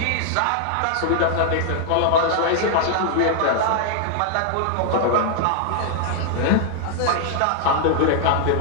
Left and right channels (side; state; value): both; different; correlation 0.00